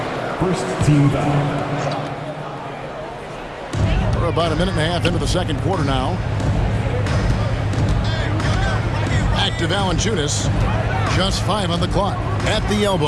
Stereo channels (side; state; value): both; identical; correlation 1.00